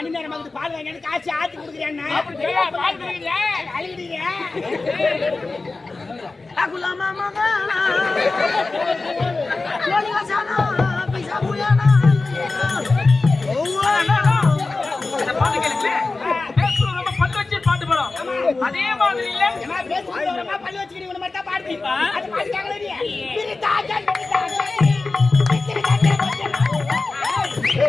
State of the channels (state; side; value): quieter; right; 3.6 dB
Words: நேரம் பால் வாங்கி காசு ஆத்தி கொடுக்குறேன். அழுகிறீங்க அதே மாதிரி இல்ல பள்ளி வச்சுக்கிறீங்க மட்டும் பாடுப்பா.